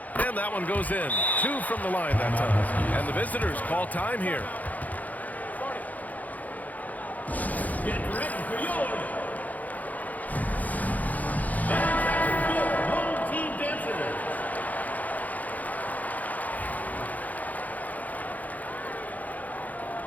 And that one goes in. 2 from the line that time. And the visitors call time here. Get ready for yours. And your home team dancers.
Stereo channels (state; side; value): late; right; 0.079 ms